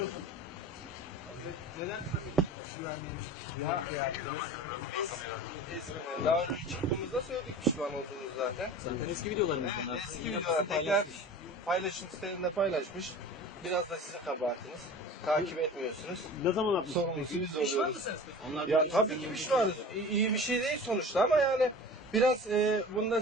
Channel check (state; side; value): normal; both; correlation 0.37